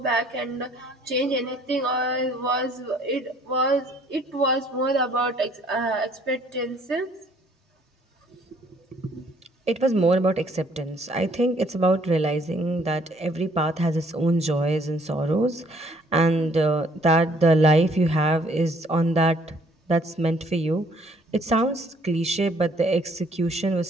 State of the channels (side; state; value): both; normal; correlation 0.62